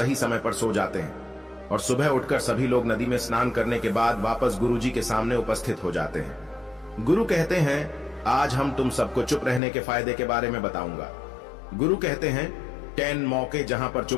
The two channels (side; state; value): right; drops out; at 9.6 s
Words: समय पर सो जाते हैं और सुबह उठकर सभी लोग नदी में स्नान करने के बाद वापस गुरुजी के सामने उपस्थित हो जाते हैं। गुरु कहते हैं, आज हम तुम सबको चुप रहने के फायदे के बारे में बताऊंगा। गुरु कहते हैं, 10 मौके जहां पर